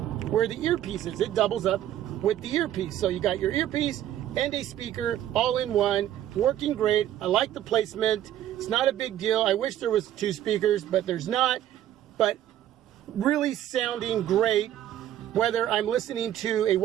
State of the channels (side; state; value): left; quieter; 12.0 dB